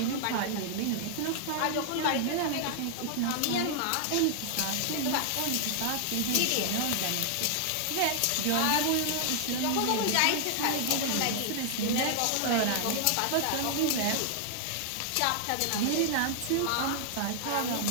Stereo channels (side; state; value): both; different; correlation -0.01